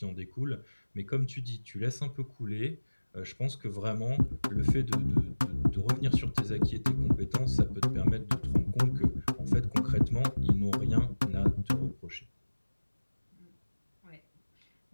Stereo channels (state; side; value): inverted; both; correlation -1.00